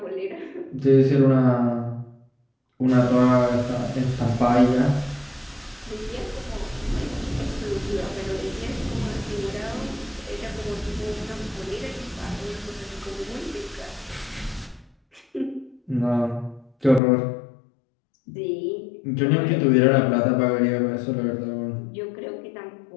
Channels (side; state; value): right; drops out; at 17.0 s